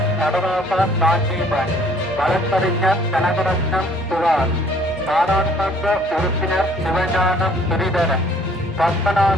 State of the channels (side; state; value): both; normal; correlation 0.58